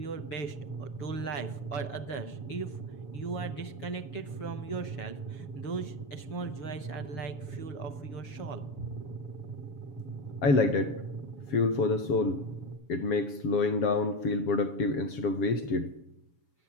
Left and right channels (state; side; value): late; right; 7.2 ms